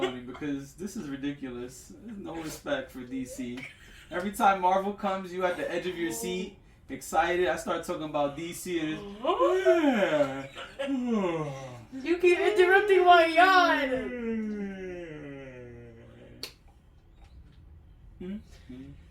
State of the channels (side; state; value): both; identical; correlation 1.00